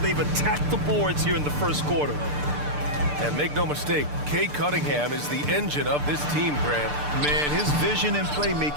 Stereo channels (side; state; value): left; late; 6.8 ms